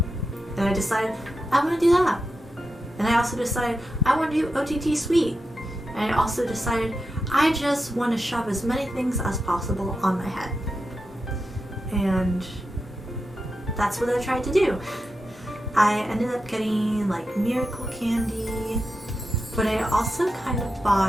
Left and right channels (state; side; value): normal; both; correlation 0.88